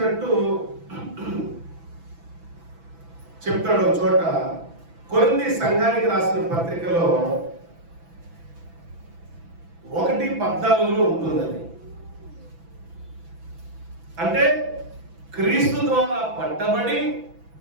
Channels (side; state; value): left; late; 6.0 ms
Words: చెప్తాడు ఒక చోట. కొరింథీ సంఘానికి రాసిన పత్రికలో 1:14 ఉంటుందని. అంటే క్రీస్తు ద్వారా పట్టబడి